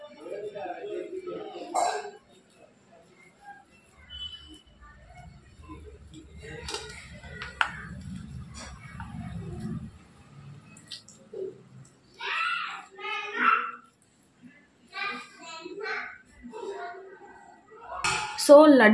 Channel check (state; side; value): identical; both; correlation 1.00